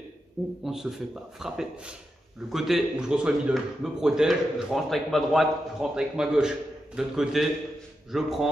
où on ne se fait pas frapper. Le côté où je reçois le middle, je me protège, je rentre avec ma droite, je rentre avec ma gauche. De l'autre côté, je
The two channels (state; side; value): normal; both; correlation 0.87